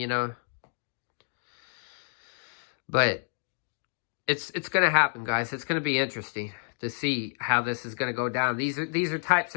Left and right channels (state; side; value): silent; right; 58 dB below the other